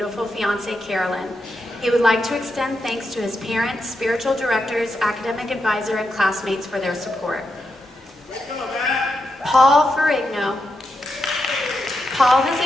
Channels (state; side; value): normal; both; correlation 0.85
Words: fiancée, Carolyn. He would like to extend thanks to his parents, spiritual directors, academic advisor, and classmates for their support. Paul Ferrigno. Paul has